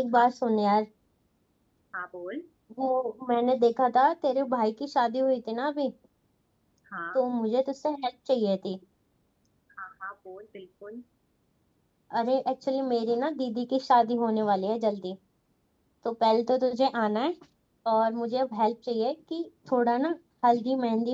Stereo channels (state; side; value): identical; both; correlation 1.00